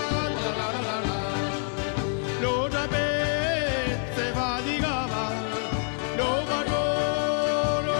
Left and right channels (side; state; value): right; silent; 56 dB below the other